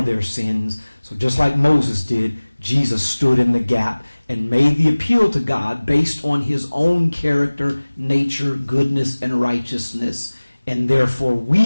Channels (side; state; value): both; inverted; correlation -1.00